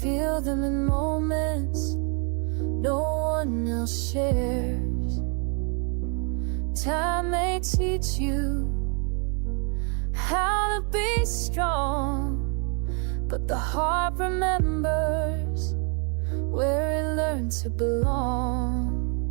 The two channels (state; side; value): quieter; left; 38.3 dB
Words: feel them in moments no one else shares. Time may teach you how to be strong, but the heart remembers where it learned to belong.